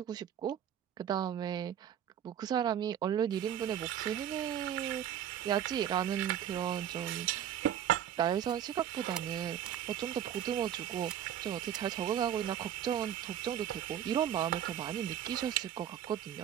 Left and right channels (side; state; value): left; quieter; 10.1 dB